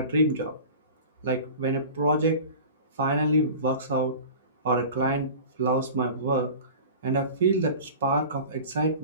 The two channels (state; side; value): inverted; both; correlation -0.37